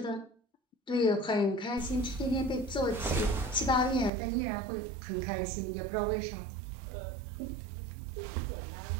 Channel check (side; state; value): left; drops out; at 4.1 s